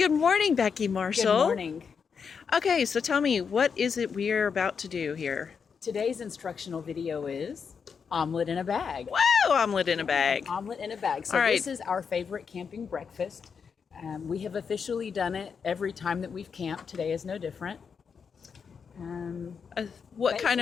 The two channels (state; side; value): quieter; right; 6.2 dB